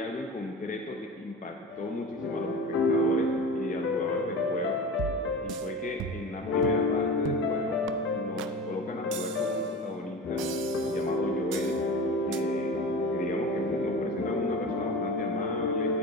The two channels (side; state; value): both; normal; correlation 0.32